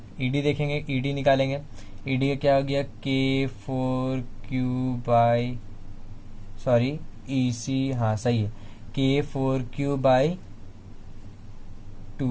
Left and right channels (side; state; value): both; identical; correlation 1.00